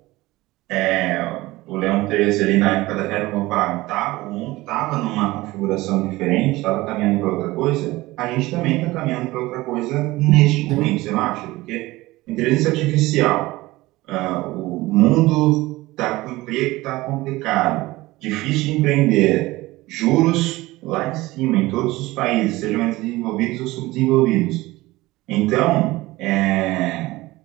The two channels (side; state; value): left; quieter; 19.3 dB